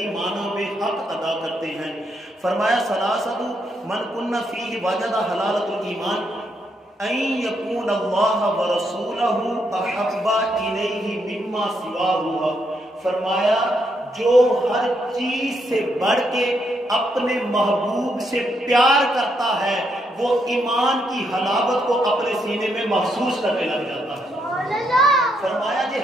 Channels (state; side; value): normal; both; correlation 0.77